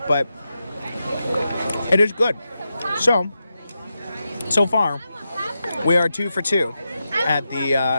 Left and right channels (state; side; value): inverted; both; correlation -0.89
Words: But it is good. So far, we are 2 for 2 at the